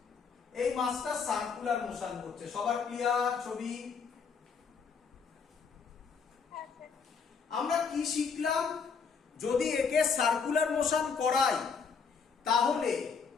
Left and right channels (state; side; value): quieter; right; 5.7 dB